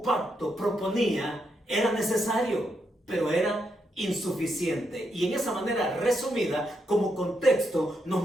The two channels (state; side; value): normal; both; correlation 0.81